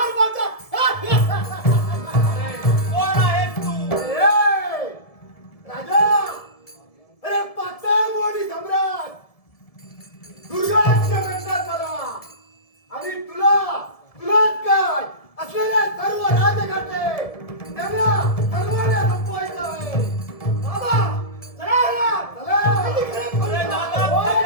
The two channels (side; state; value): right; late; 1.7 ms